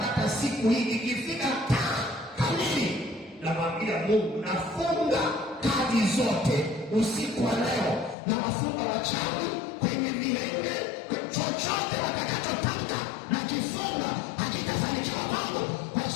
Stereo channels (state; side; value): drops out; right; at 8.2 s